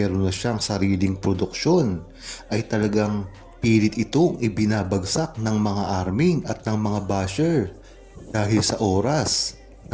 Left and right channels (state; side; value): identical; both; correlation 1.00